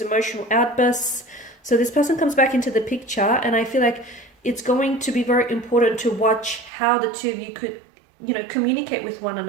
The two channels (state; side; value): drops out; left; at 6.7 s